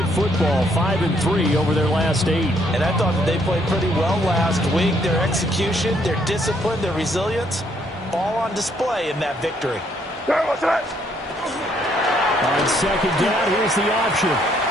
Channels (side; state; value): both; normal; correlation 0.69